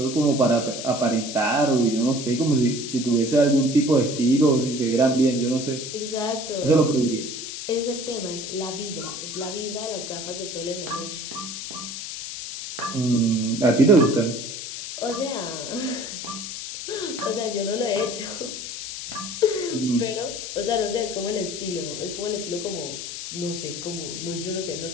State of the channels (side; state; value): left; noise; hiss, 7 dB below the sound